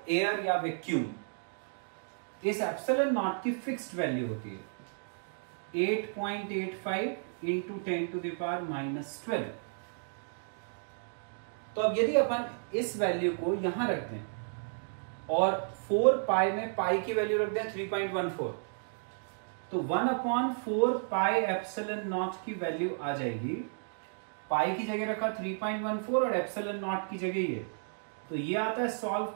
एयर या वैक्यूम। इस एप्सिलॉन नॉट की फिक्स्ड वैल्यू होती है 8.85 इंटू 10⁻⁻12। तो अब यदि अपन इस वैल्यू को यहां रख दें और 4 पाई में पाई की वैल्यू रख दें 3.14, तो 1/4 पाई एप्सिलॉन नॉट की वैल्यू आ जाएगी। पाई की जगह रखा 3.14 और एप्सिलॉन नॉट की जगह ये, तो ये आता है सॉल्व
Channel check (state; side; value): silent; left; digital silence